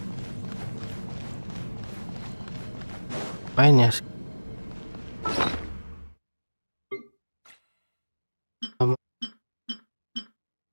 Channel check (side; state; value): both; inverted; correlation -1.00